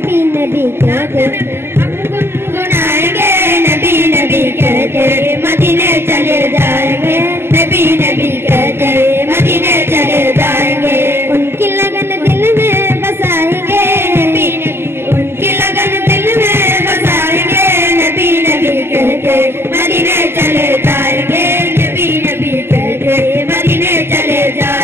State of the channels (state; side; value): late; left; 0.11 ms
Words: नबी कहते हम गुनगुनाएंगे, नबी नबी कहते मदीने चले जाएंगे, नबी नबी कहते मदीने चले जाएंगे। उनकी लगन दिल में बसाएंगे, नबी नबी उनकी लगन दिल में बसाएंगे, नबी नबी कहते मदीने चले जाएंगे, नबी नबी कहते मदीने चले